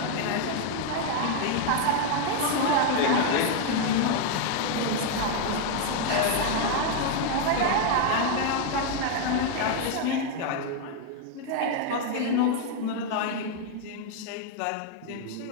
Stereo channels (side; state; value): both; different; correlation 0.01